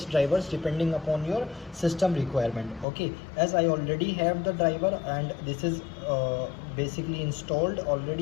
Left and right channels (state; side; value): drops out; right; at 2.9 s